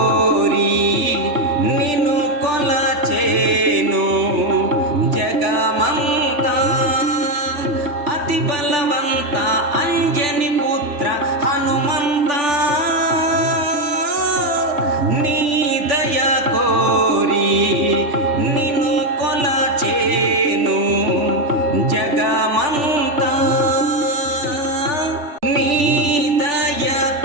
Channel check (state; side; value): late; left; 3.4 ms